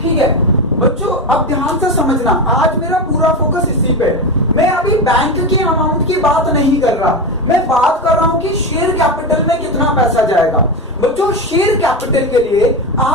ठीक है बच्चों, अब ध्यान से समझना, आज मेरा पूरा फोकस इसी पे। मैं अभी बैंक की अमाउंट की बात नहीं कर रहा, मैं बात कर रहा हूं कि शेयर कैपिटल में कितना पैसा जाएगा। बच्चों शेयर कैपिटल के लिए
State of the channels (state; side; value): normal; both; correlation 0.17